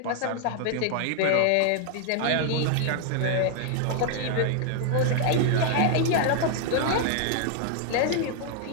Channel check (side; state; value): both; different; correlation 0.00